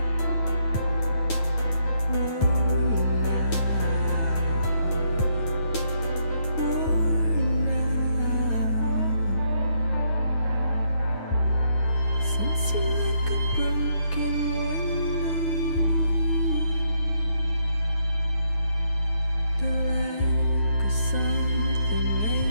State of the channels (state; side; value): late; right; 9.3 ms